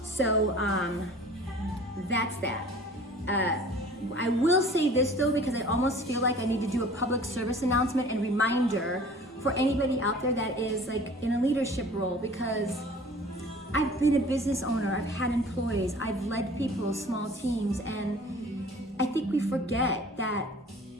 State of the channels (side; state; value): both; normal; correlation 0.47